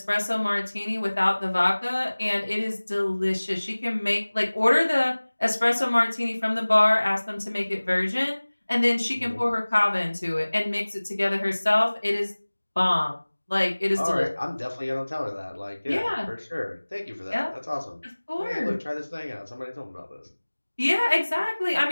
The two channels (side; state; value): both; inverted; correlation -1.00